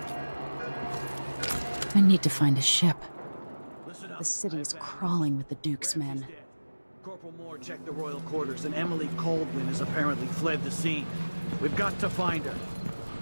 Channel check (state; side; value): inverted; both; correlation -1.00